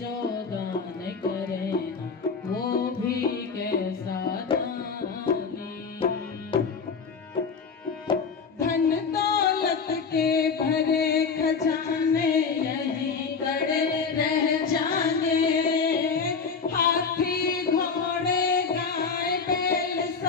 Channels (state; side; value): quieter; right; 5.4 dB